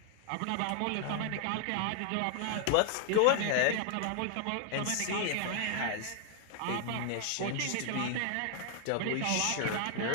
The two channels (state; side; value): different; both; correlation 0.00